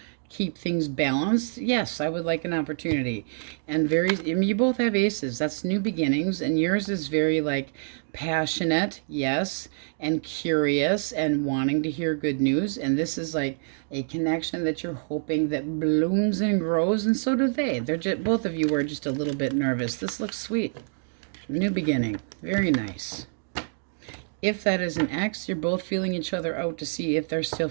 keep things balanced, yes, I would like an opportunity. And I mean, you both have aces. That's new beginnings, and yours is very like passionate, yes, and curious and wanting to hear good news. And this is like a connection that you're hoping that blooms and grows, and so do they. They're just, both of you are just a little bit nervous. This looks sweet. New beginning. Very nice. If that is an X, you're both feeling each other out to see if there's still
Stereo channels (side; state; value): left; silent; digital silence